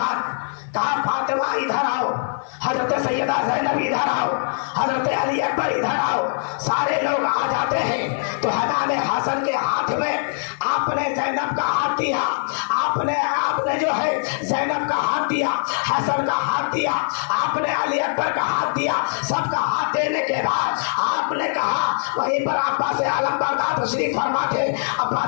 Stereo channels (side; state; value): right; silent; digital silence